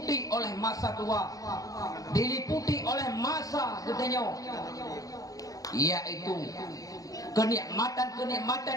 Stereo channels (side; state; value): right; late; 0.17 ms